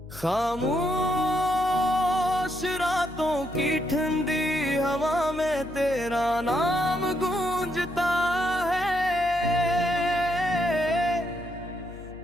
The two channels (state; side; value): noise; left; hum, 16 dB below the sound